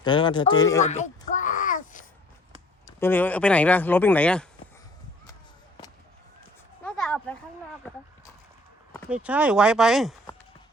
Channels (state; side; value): normal; both; correlation 0.55